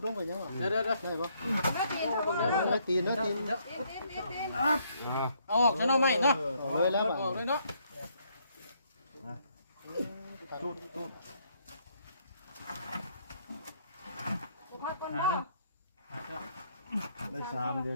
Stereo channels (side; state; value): both; inverted; correlation -0.70